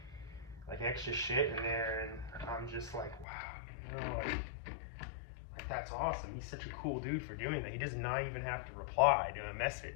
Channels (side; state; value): right; drops out; at 3.2 s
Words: like extra shit in there, and I'm just like, wow, you know, like that's awesome. He's such a cool dude for doing that. He does not even have to reply to a